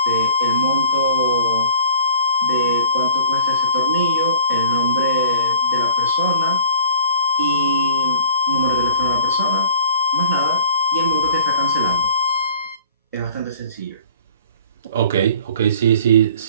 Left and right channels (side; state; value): both; inverted; correlation -0.51